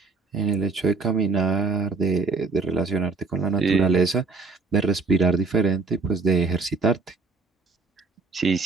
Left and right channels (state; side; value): quieter; left; 4.2 dB